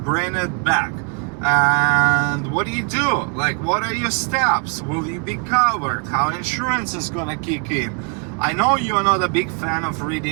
it back, and what do? Like, what are your steps? Will you be covered? How insurance is gonna kick in? I know you're not a big fan of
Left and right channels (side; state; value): left; quieter; 37.1 dB